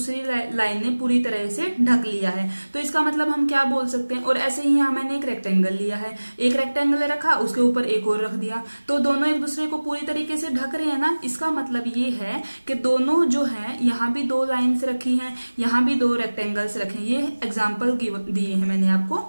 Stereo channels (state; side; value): inverted; both; correlation -1.00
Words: लाइन ने पूरी तरह से ढक लिया है। तो इसका मतलब हम क्या बोल सकते हैं, और ऐसे ही यहाँ मैंने एक रेक्टेंगल लिया है, एक रेक्टेंगल रखा, उसके ऊपर एक और रख दिया, तो दोनों एक दूसरे को पूरी तरीके से ढक रहे हैं ना। इसका मतलब ये है कि दोनों जो है, यहाँ भी 2 लाइन्स रखी हैं, यहाँ भी 2 रेक्टेंगल्स रखे हैं। ये एग्जाम्पल दिए हैं मैंने आपको।